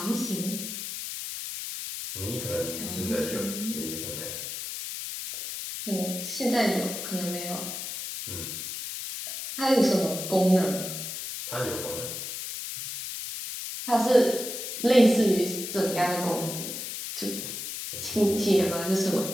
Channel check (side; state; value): left; noise; hiss, 6 dB below the sound